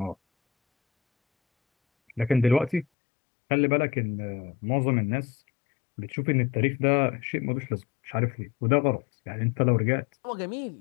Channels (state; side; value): drops out; right; at 2.9 s